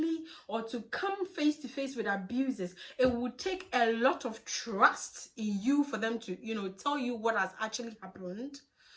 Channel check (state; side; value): identical; both; correlation 1.00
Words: or to come face to face with abusers, it would take a lot of trust in you for them to, you know, tell you what has actually happened.